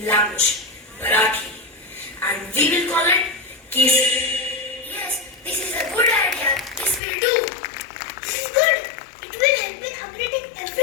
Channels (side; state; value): right; drops out; at 7.0 s